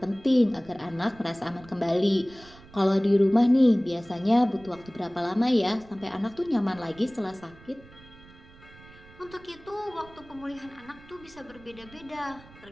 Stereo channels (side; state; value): right; noise; rumble, 22 dB below the sound